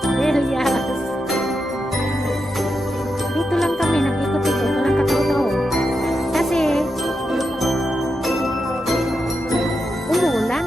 Villas. Dito lang kami nag-ikot-ikot, walang katao-tao. Kasi umuulan,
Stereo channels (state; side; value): normal; both; correlation 0.86